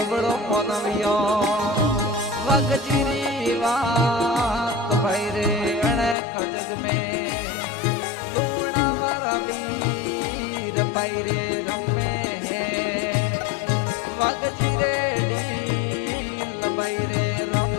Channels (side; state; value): right; drops out; at 6.2 s